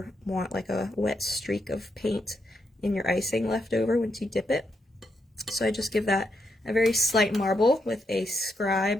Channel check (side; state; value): both; normal; correlation 0.81